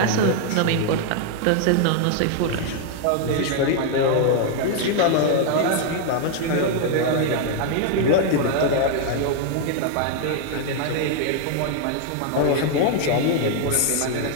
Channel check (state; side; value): different; both; correlation 0.00